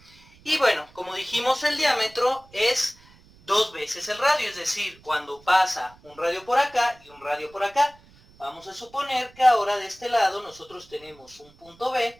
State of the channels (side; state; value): right; noise; rumble, 27 dB below the sound